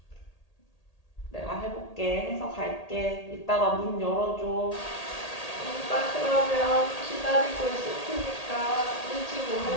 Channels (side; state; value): right; late; 1.8 ms